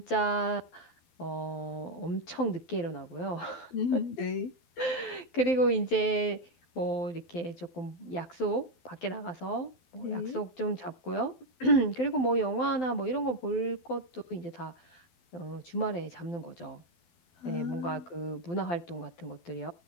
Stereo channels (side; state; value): right; late; 12 ms